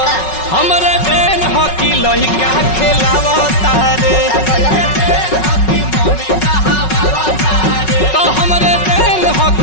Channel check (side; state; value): right; late; 5.4 ms